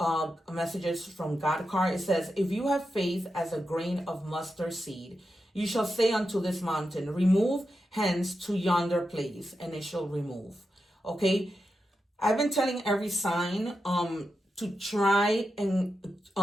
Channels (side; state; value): both; normal; correlation 0.88